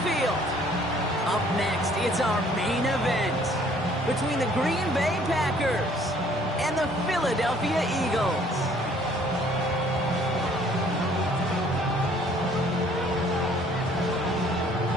Field. Up next, it's our main event between the Green Bay Packers and the Philadelphia Eagles.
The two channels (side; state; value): both; normal; correlation 0.59